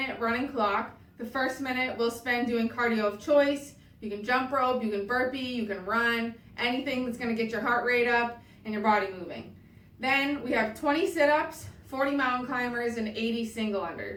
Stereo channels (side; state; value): both; identical; correlation 1.00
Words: running clock. The first minute we'll spend doing cardio of choice. You can jump rope, you can burpee, you can run, anything that's going to get your heart rate up and your body moving. Then we have 20 sit-ups, 40 mountain climbers, and 80 single